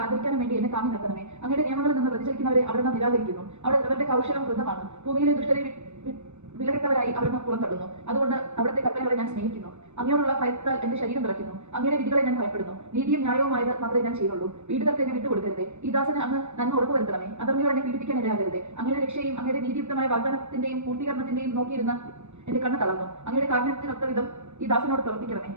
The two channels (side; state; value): left; late; 0.82 ms